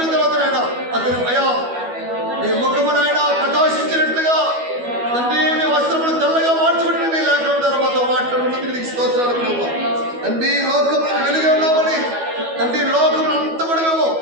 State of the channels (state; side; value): late; left; 12 ms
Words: తర్వాత ఆయన అతని అయ్యా నీ ముఖము నాయన ప్రకాశించినట్లుగా తండ్రి మీ వస్త్రములు తెల్లగా మార్చబడిన నీ లేఖనం ద్వారా మాతో మాట్లాడున్నందుకు నీకు స్తోత్రాలు ప్రభు తండ్రి లోకములను వెలుగు ఉన్నామని తండ్రి లోకములు అంతా కూడా మేము